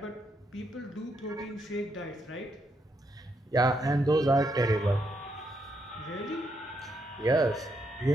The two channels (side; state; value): both; normal; correlation 0.78